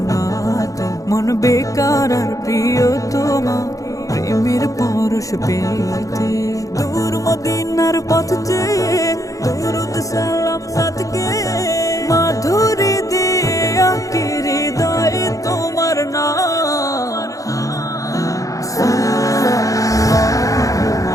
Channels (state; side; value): late; right; 0.16 ms